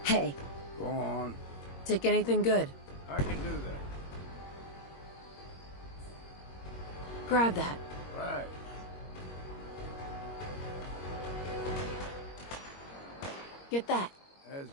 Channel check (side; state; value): right; late; 21 ms